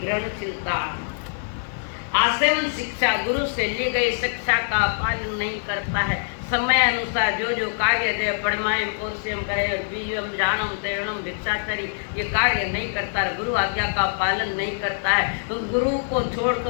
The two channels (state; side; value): silent; right; digital silence